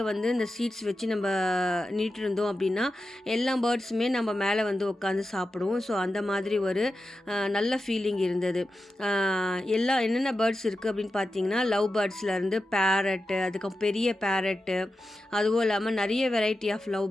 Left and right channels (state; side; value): normal; both; correlation 0.91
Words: வந்து இந்த சீட்ஸ் வச்சு நம்ம நீட்டு இருந்தோம் அப்படின்னா எல்லா பேர்ட்ஸுமே நம்ம மேலே வந்து உட்காந்து சாப்பிடுவோம். ஸோ அந்த மாதிரி ஒரு நல்ல ஃபீலிங் இருந்தது. என்னென்ன பேர்ட்ஸ் இருக்குது அப்படின்னு பார்த்தீங்கன்னா லவ் பேர்ட்ஸ்லேருந்து பேரட்டு, அதுக்கப்புறம் பெரிய பேரட்டு, அதுவும் இல்லாமல் நிறைய வெரைட்டி ஆஃப் லவ்